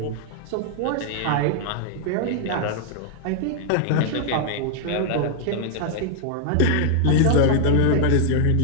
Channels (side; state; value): both; different; correlation 0.00